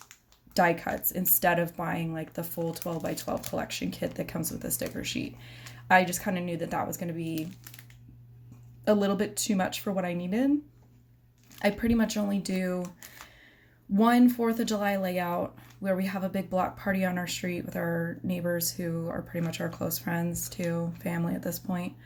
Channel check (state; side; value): identical; both; correlation 1.00